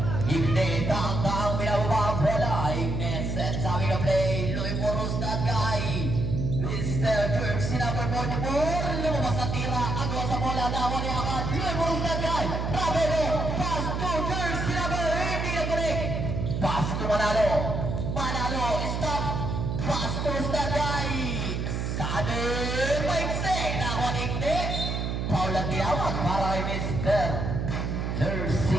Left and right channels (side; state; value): right; noise; hum, 2 dB below the sound